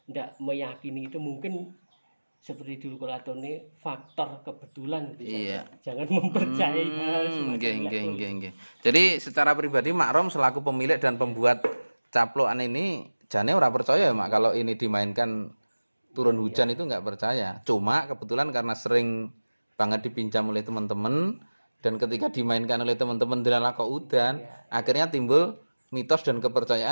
tidak meyakini itu, mungkin seperti dulu Kolatone faktor kebetulan gitu Iya. saja. Jangan mempercayai hal semacam itu. Nggih. Jadi secara pribadi Mak Rom selaku pemilik dan pembuat caplokan ini jane ora percaya ya, Mak, kalau ini dimainkan turun hujan itu nggak percaya. Cuma kebetulan karena sering banget dipinjam oleh teman-teman dan ketika dimainkan oleh teman-teman dilala kok udan, akhirnya timbul mitos dan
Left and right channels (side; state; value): both; inverted; correlation -1.00